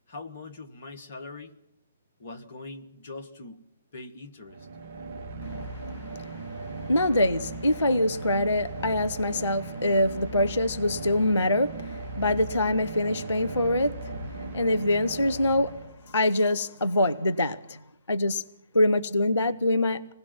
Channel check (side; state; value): both; inverted; correlation -0.76